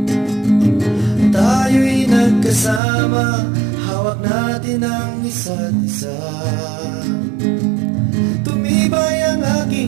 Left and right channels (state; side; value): drops out; left; at 2.8 s